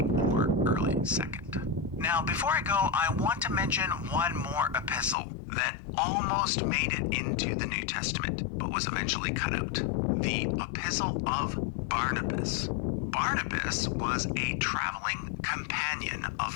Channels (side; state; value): right; drops out; at 5.2 s